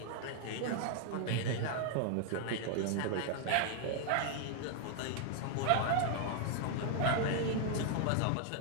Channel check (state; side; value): different; both; correlation 0.00